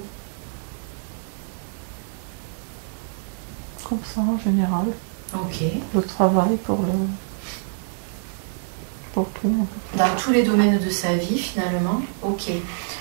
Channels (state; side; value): silent; left; digital silence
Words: Comme ça, en général. Ok. Le travail pour pour tout. En fait. Dans tous les domaines de sa vie, finalement. Ok.